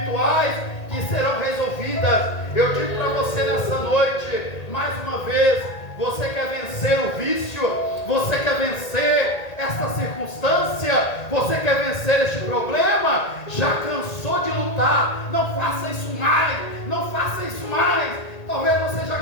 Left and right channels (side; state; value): right; late; 1.8 ms